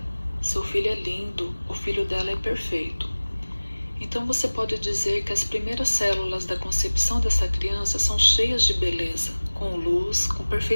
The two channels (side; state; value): both; inverted; correlation -1.00